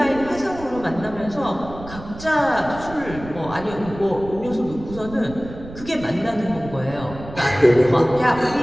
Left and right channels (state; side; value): noise; right; rumble, 14 dB below the sound